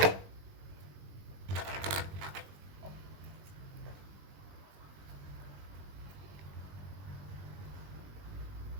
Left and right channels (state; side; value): late; left; 20 ms